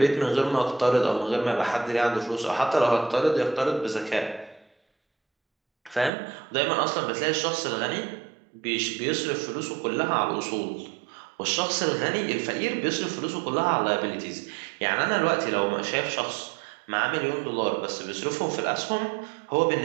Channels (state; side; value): drops out; left; at 6.1 s